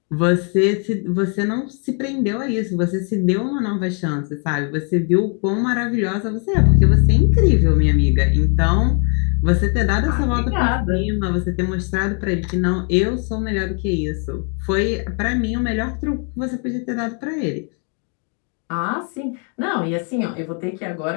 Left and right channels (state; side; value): quieter; right; 40.0 dB